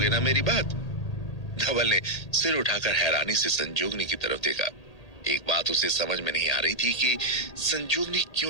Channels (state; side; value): late; right; 1.8 ms